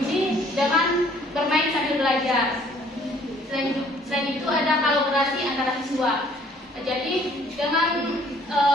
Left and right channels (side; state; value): both; normal; correlation 0.59